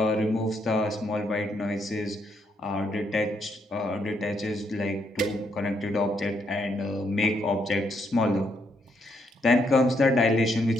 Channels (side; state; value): both; normal; correlation 0.75